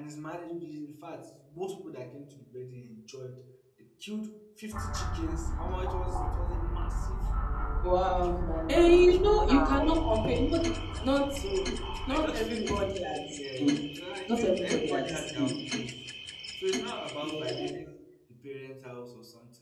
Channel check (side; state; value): both; identical; correlation 1.00